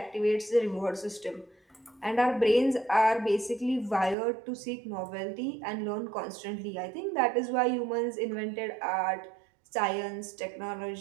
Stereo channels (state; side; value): drops out; left; at 4.2 s